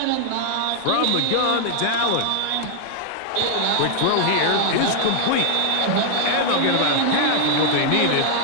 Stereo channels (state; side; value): different; both; correlation 0.00